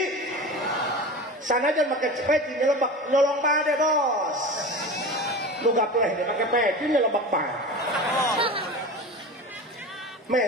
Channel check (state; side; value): normal; both; correlation 0.31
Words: sanajan make peci nyelebak nyolong bade bos nu gapleh teh make peci nyelebak bade